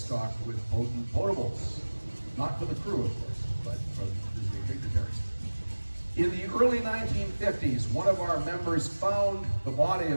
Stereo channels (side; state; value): both; inverted; correlation -1.00